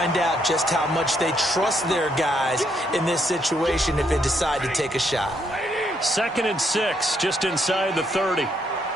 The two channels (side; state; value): both; normal; correlation 0.74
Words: out just how much they trust their guys in this situation if they decide to take a shot. 2nd and 6, just inside the 30.